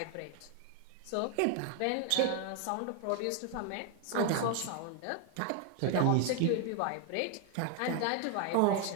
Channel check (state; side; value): different; both; correlation 0.00